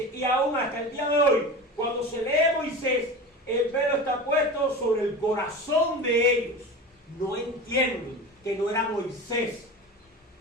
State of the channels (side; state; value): both; normal; correlation 0.30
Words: y aún hasta el día de hoy, cuando se lee Moisés, el velo está puesto sobre el corazón de ellos. No entienden que no era Moisés.